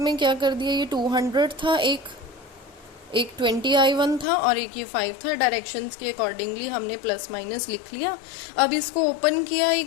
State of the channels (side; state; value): right; drops out; at 4.2 s